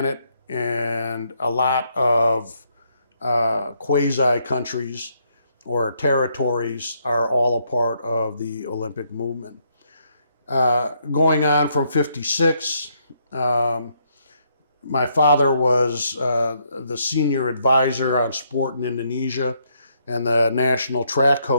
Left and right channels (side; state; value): both; inverted; correlation -0.74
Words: and a lot of quasi-countries or territories are all a part of the Olympic movement. Going on from 56, my father was the senior advisor on sport in Indonesia and the national track